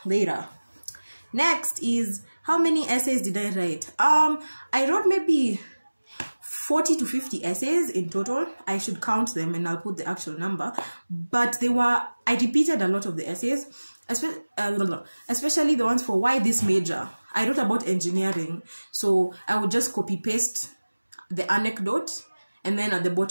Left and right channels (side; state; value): both; inverted; correlation -1.00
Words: later. Next is, how many essays did I write? I wrote maybe 40 to 50 essays in total. I should count them and I'll put the actual number. But I repeated a lot of the essays, especially the ones for why this major. I wrote about engineering, so I would just copy paste the anecdote and then at the